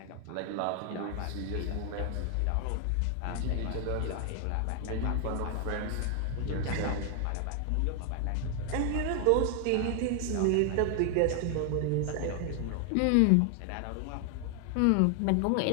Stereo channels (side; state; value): both; different; correlation 0.00